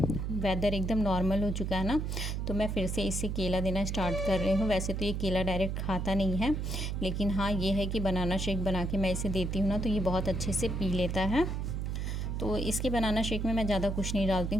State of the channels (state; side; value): noise; right; hum, 2 dB below the sound